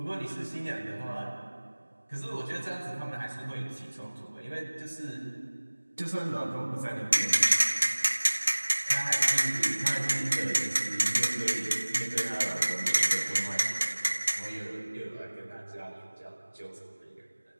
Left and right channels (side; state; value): both; inverted; correlation -1.00